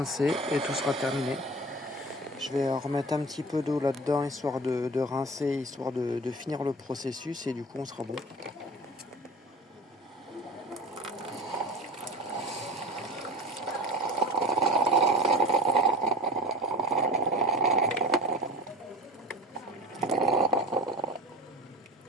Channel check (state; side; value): normal; both; correlation 0.36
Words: et tout sera terminé. Je vais remettre un petit peu d'eau là-dedans, histoire de rincer, histoire de finir le processus et du coup on sera bon.